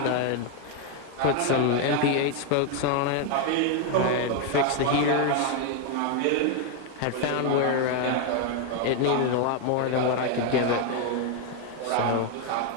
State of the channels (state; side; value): different; both; correlation 0.01